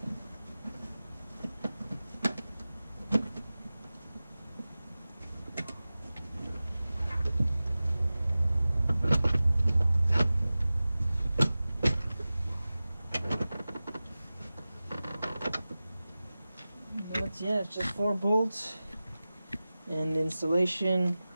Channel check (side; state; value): both; inverted; correlation -0.97